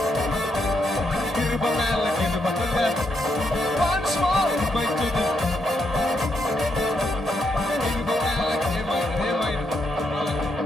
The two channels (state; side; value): normal; both; correlation 0.79